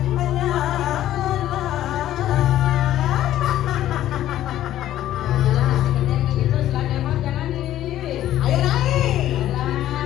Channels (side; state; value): right; quieter; 12.9 dB